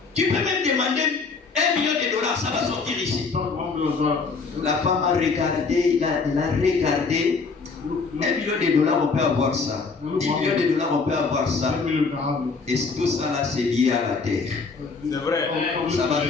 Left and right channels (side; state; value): right; quieter; 4.6 dB